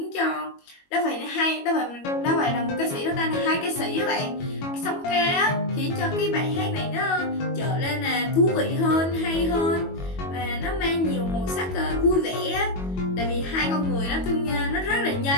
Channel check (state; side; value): late; right; 22 ms